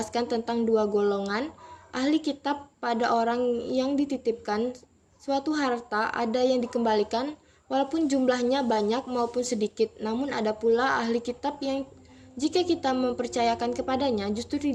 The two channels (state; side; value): identical; both; correlation 1.00